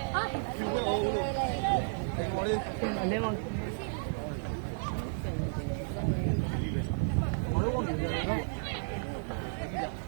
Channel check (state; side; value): silent; left; digital silence